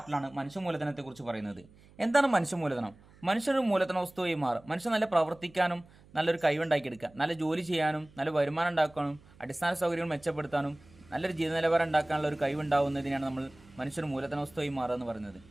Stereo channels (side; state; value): right; noise; hum, 25 dB below the sound